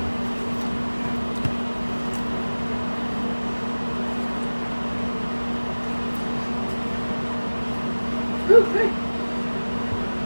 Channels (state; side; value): inverted; both; correlation -1.00